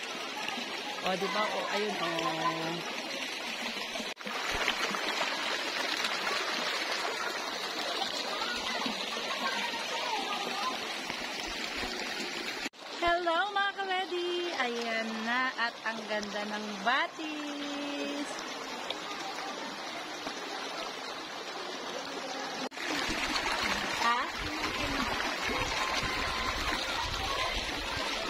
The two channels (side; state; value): both; identical; correlation 1.00